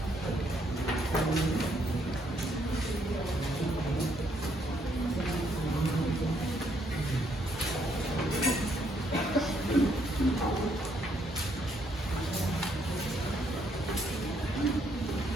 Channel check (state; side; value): normal; both; correlation 0.71